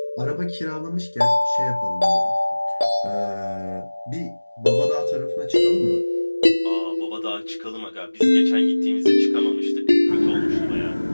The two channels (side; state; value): both; inverted; correlation -1.00